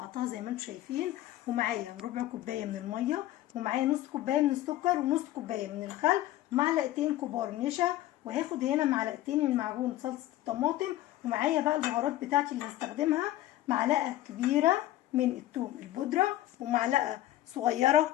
زي ما انتم شايفين. ومعايا ربع كوبايه من الميه، ومعايا نص كوبايه من السكر، ونص كوبايه من الخل، ومعلقتين كبار نشا. وهاخد هنا معلقتين من معجون صلصه الطماطم. ومعايا بقى البهارات بتاعتي اللي هستخدمها: معلقه كبيره من الثوم البودره، ومعلقه صغيره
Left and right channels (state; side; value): quieter; right; 14.6 dB